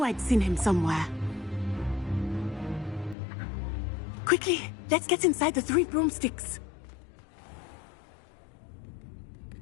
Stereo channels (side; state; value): right; drops out; at 3.2 s